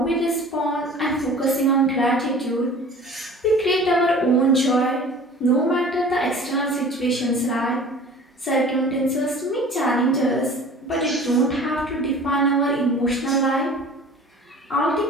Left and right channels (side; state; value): both; normal; correlation 0.43